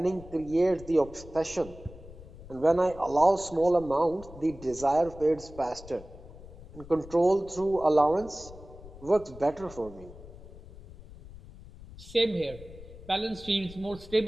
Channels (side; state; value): left; noise; rumble, 17 dB below the sound